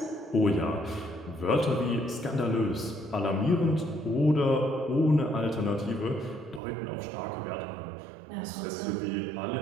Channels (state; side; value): drops out; left; at 6.6 s